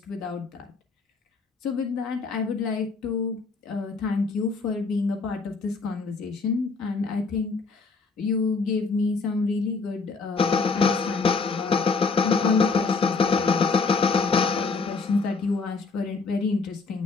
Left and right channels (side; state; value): right; quieter; 4.4 dB